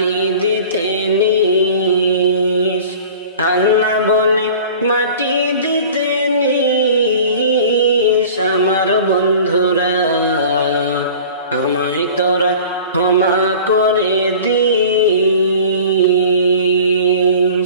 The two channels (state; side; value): inverted; both; correlation -0.42